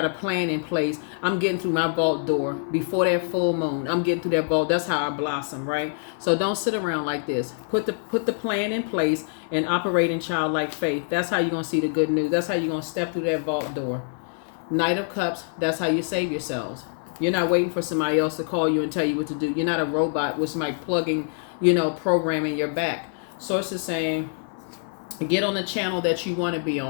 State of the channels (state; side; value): silent; right; 55 dB below the other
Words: a plan in place. I'm getting through my vault door before that full moon. I'm getting through that vault. That's how I blossom, right? So don't sit around like this. Put the plan in place and operate in childlike faith. That's how you're going to see the good news. That's how you're going to step through that vault door. Knight of Cups, that's how you save yourselves. You're not waiting for somebody else to call you and tell you what to do. You're not a robot with somebody plugging, programming your back. Source is saying, get on the channel that you want to be